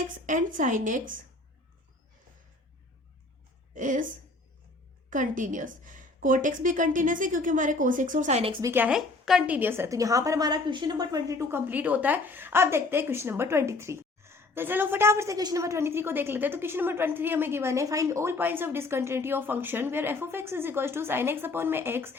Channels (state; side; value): quieter; right; 3.3 dB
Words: and sin x is continuous। Cot x भी कंटिन्यूस है क्योंकि हमारे कोस एक्स और साइन एक्स भी क्या है, कंटिन्यूस है। तो यहाँ पर हमारा क्वेश्चन नंबर 22 कंप्लीट होता है। अब देखते हैं क्वेश्चन नंबर 23। तो चलो फटाफट से क्वेश्चन नंबर 23 को देख लेते हैं। तो क्वेश्चन नंबर 23 हमें गिवन है, find all points of discontinuity of function where f of x is equals to sine x upon में x,